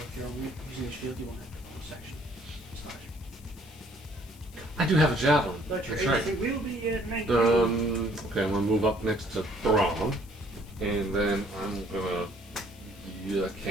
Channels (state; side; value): noise; left; hiss, 23 dB below the sound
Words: you're using the shield, you won't have to bonus section. I do have a javelin. But your That's right. AC will be at 19. Okay, I'm gonna move up next to Braum, and then I'm gonna. Yeah,